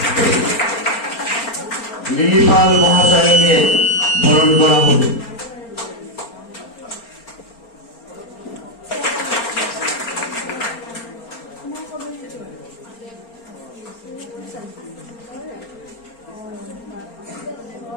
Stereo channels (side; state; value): right; late; 4.3 ms